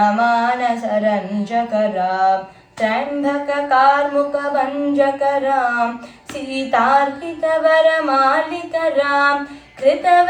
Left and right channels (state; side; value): identical; both; correlation 1.00